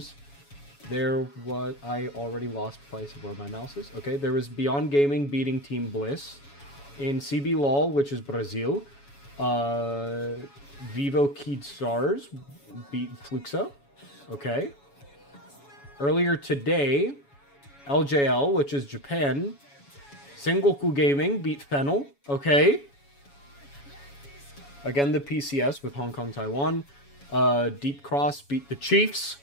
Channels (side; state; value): right; late; 7.1 ms